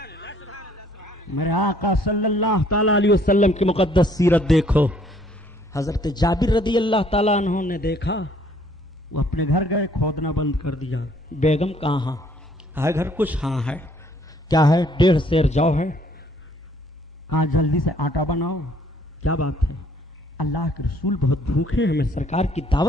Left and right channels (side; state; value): both; normal; correlation 0.62